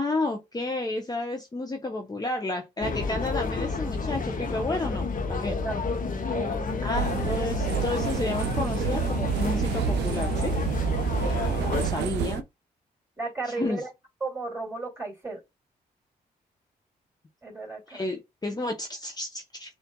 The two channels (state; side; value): normal; both; correlation 0.54